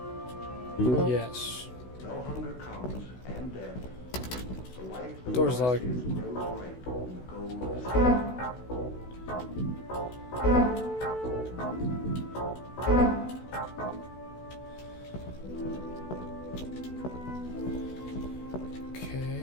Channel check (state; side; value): late; right; 16 ms